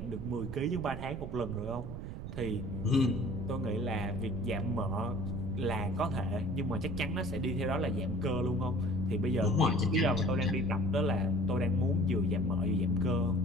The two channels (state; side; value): noise; right; rumble, 8 dB below the sound